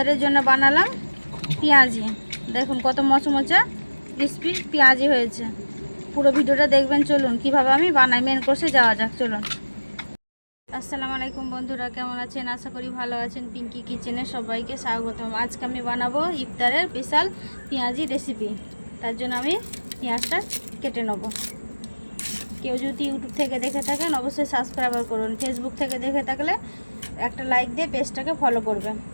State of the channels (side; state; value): both; inverted; correlation -1.00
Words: জন্য বানালাম পেঁয়াজি। দেখুন কত মচমচা ক্রিসপি পেঁয়াজি হয়েছে। পুরো ভিডিওটা দেখবেন। চলুন কিভাবে আমি বানাই, মেন কোর্সে যাওয়া যাক। চলুন। আসসালামু আলাইকুম বন্ধুরা, কেমন আছেন? আশা করি ভালো আছেন। পিঙ্কি কিচেনে সবাইকে স্বাগতম। আজকে আমি বানাবো ইফতারের স্পেশাল পেঁয়াজি রেসিপি। তার জন্য আমি পেঁয়াজটা কেটে নেব। কেউ যদি ইউটিউব থেকে দেখে থাকেন অবশ্যই সাবস্ক্রাইব করুন। ফেসবুক থেকে দেখে থাকলে একটা লাইক দিয়ে পেজটাকে ফলো করবেন।